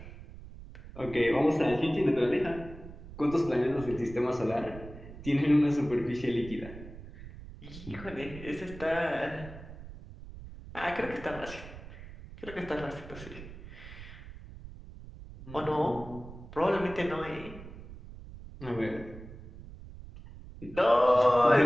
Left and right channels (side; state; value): right; noise; rumble, 15 dB below the sound